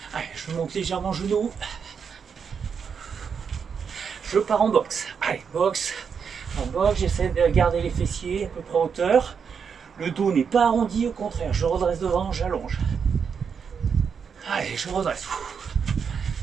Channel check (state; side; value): quieter; left; 6.5 dB